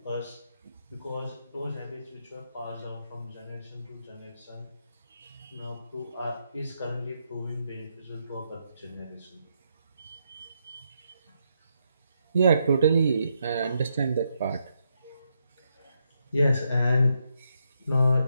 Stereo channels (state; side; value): inverted; both; correlation -0.79